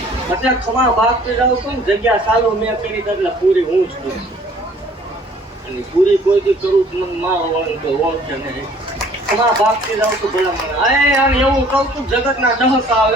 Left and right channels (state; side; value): normal; both; correlation 0.55